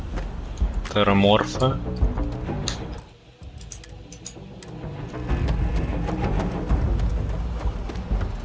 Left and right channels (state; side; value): identical; both; correlation 1.00